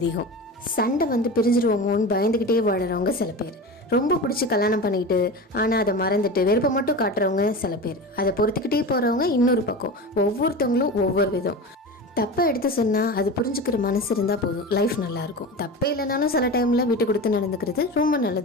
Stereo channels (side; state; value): both; normal; correlation 0.28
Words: சண்டை பிரிஞ்சிருவோமோன்னு பயந்துக்கிட்டே வாடுறவங்க சில பேர், ரொம்ப பிடிச்சி கல்யாணம் பண்ணிக்கிட்டு ஆனால் அதை மறந்துட்டு வெறுப்பை மட்டும் காட்டுறவங்க சில பேர், அதை பொறுத்துக்கிட்டே போகிறவங்க இன்னொரு பக்கம். ஒவ்வொருத்தவங்களும் ஒவ்வொரு விதம். தப்பை எடுத்து சொன்னால் அது புரிஞ்சுக்கிற மனசு இருந்தால் போதும், லைஃப் நல்லாயிருக்கும். தப்பே இல்லைனாலும் சில டைமில் விட்டு கொடுத்து நடந்துக்கிறது ரொம்ப